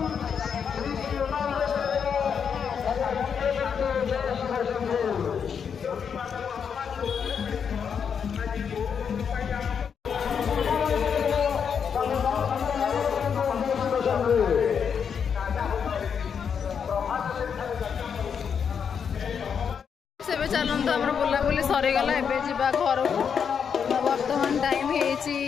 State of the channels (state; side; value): quieter; right; 7.0 dB